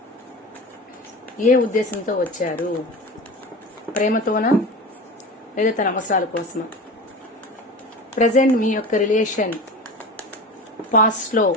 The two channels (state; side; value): normal; both; correlation 0.31